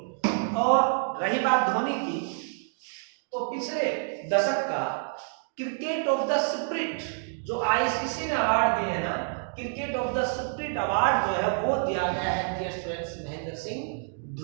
और रही बात धोनी की, तो पिछले दशक का क्रिकेट ऑफ द स्पिरिट जो ICC ने अवार्ड दिए हैं ना, cricket of the spirit award जो है वो दिया गया है डियर स्टूडेंट्स महेंद्र सिंह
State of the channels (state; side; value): silent; left; digital silence